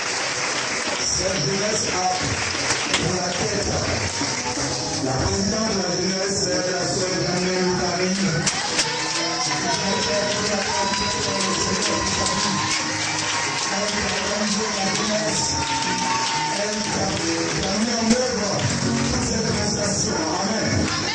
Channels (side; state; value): both; identical; correlation 1.00